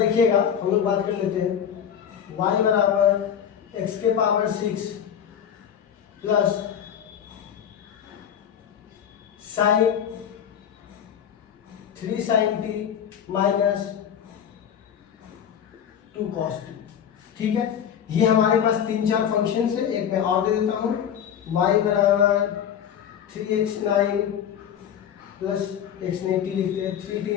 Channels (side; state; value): right; quieter; 8.8 dB